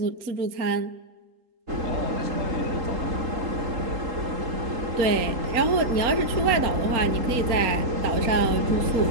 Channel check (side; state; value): left; late; 4.3 ms